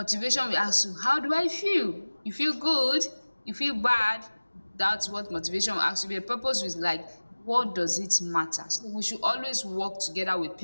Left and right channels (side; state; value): both; inverted; correlation -1.00